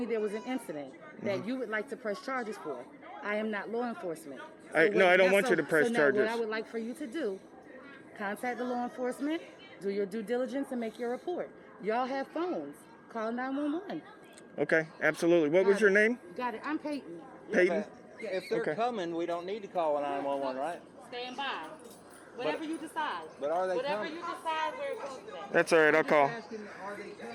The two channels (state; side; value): identical; both; correlation 1.00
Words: there was an incident that you would like to press charges for. I am not law enforcement. I don't want you to press now charges. What I would like for you to do, contact the law enforcement, do your due diligence, and make your report. Y'all have phones. Call 911. Okay, absolutely. What was Got your it. name? Got it. I'm Peyton. Peyton? If they're Okay. coming, we don't need to call 911, right? Stand by. Whatever you decide. But are they Whatever coming? you decide, where it goes today. That's all right. I'll call. Asking, are they